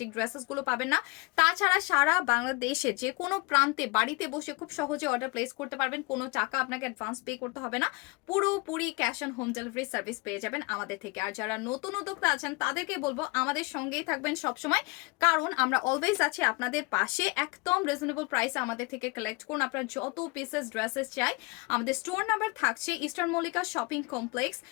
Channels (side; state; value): right; quieter; 26.9 dB